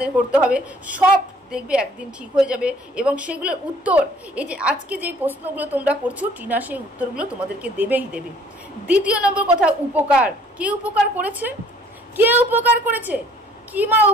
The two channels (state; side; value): normal; both; correlation 0.57